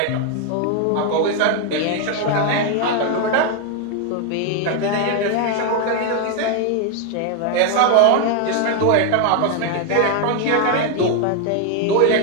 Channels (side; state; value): both; different; correlation 0.01